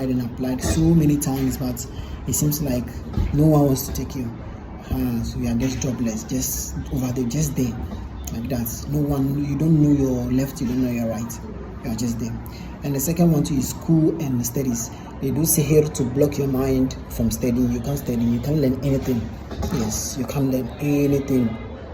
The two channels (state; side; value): identical; both; correlation 1.00